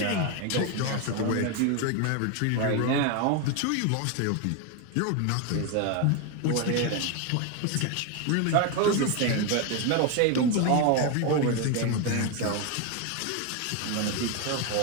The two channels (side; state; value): both; different; correlation 0.02